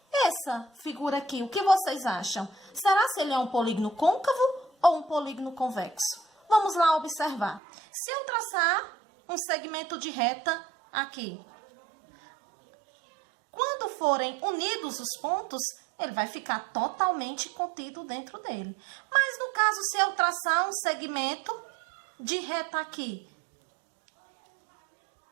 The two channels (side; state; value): left; drops out; at 7.6 s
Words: Essa figura aqui, o que vocês acham? Será se ele é um polígono côncavo ou um polígono convexo? Vamos lá observar. Se eu traçar um segmento de reta aqui, quando forem unidos os pontos, ele vai ficar totalmente contido dentro dele. Mas no caso, se eu traçar um segmento de reta aqui,